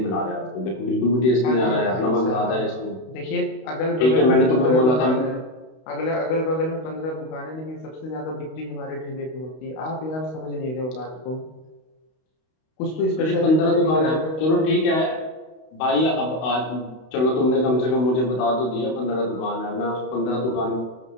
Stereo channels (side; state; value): right; late; 32 ms